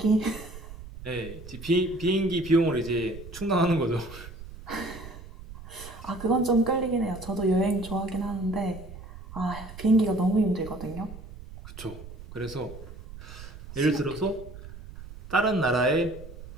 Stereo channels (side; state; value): right; noise; rumble, 14 dB below the sound